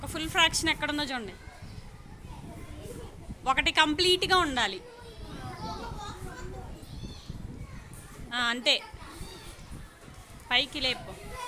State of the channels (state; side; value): identical; both; correlation 1.00